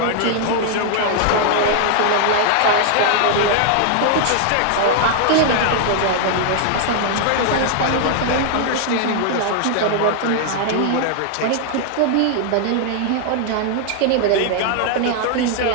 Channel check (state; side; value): different; both; correlation 0.00